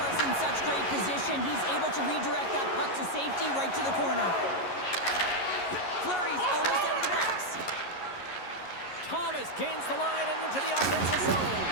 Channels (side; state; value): right; late; 11 ms